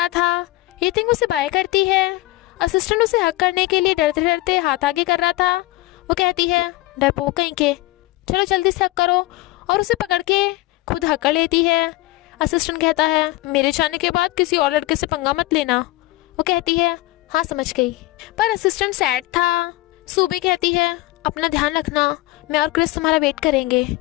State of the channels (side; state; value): right; quieter; 18.9 dB